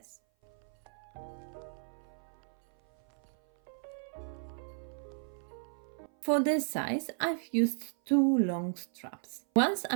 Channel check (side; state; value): left; silent; 55 dB below the other